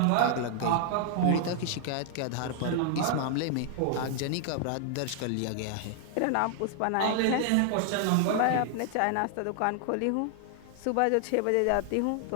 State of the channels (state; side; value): different; both; correlation 0.00